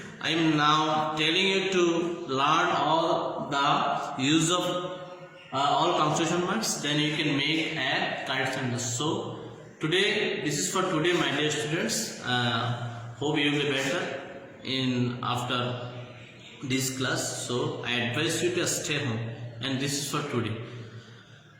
I am now telling you to learn all the use of all punctuation marks. Then you can make a correct sentence. So today, this is for today, my dear students. Hope you will be better in after this class. So I advise you to stay home. And this is for today.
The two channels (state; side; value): identical; both; correlation 1.00